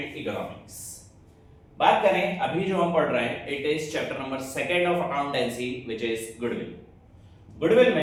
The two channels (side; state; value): both; identical; correlation 1.00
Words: economics. बात करें अभी जो हम पढ़ रहे हैं, it is chapter number 2 of accountancy which is goodwill. Goodwill